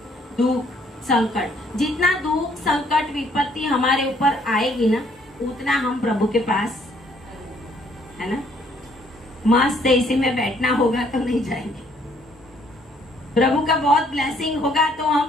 दुख, संकट। जितना दुख, संकट, विपत्ति हमारे ऊपर आएगी ना, उतना हम प्रभु के पास, है ना, मस्त इसी में बैठना होगा तो नहीं जाएंगे। प्रभु का बहुत ब्लेसिंग होगा तो हम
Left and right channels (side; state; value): both; normal; correlation 0.65